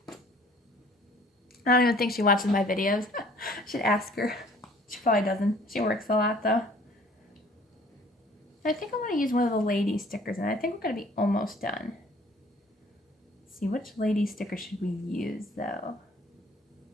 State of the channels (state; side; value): normal; both; correlation 0.55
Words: I don't even think she watches my videos. Should ask her. She probably doesn't. She works a lot though. I think I want to use one of the lady stickers, and I think we're going to be almost done. Let's see, which lady sticker should we use though?